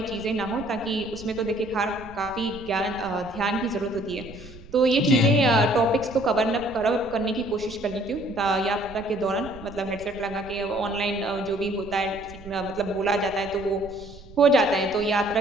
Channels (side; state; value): right; noise; rumble, 18 dB below the sound